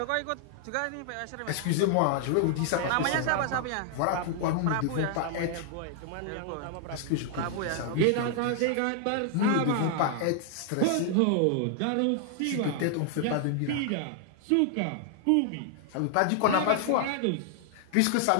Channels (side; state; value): both; different; correlation 0.00